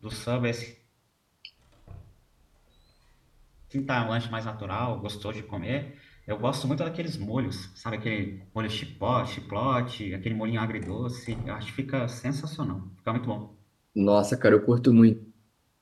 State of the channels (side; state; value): both; identical; correlation 1.00